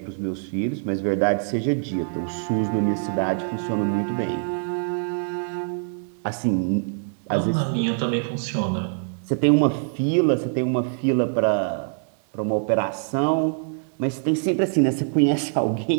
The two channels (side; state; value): left; silent; 63 dB below the other